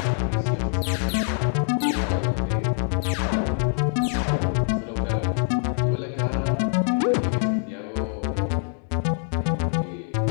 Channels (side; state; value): right; silent; digital silence